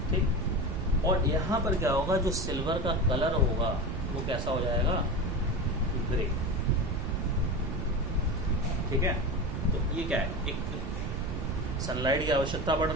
ठीक। और यहाँ पर क्या होगा, जो सिल्वर का कलर होगा वो कैसा हो जाएगा, ग्रे, ठीक है। तो ये क्या है, एक सनलाइट की आवश्यकता पड़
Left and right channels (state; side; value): noise; right; rumble, 3 dB below the sound